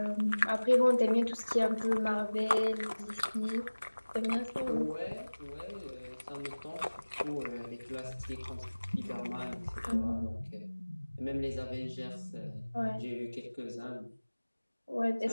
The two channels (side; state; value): both; inverted; correlation -1.00